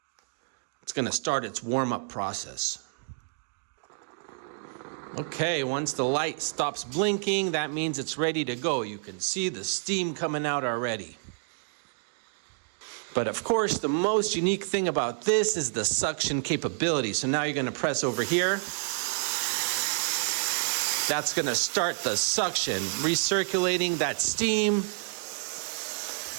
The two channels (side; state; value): left; silent; digital silence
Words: It's going to start its warm-up process. Okay, once the light stops blinking, that means it's ready to go. You can see the steam coming out already. But of course, the most unique thing about this is the suction capability. So now you're going to press over here. That's going to start the suction, recirculating that steam